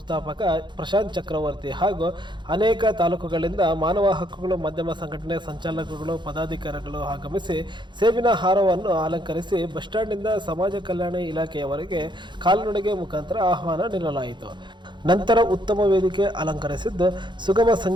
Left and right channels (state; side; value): late; left; 0.22 ms